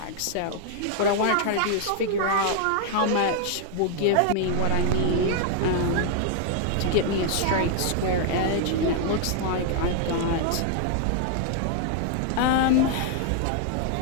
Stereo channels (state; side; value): different; both; correlation 0.00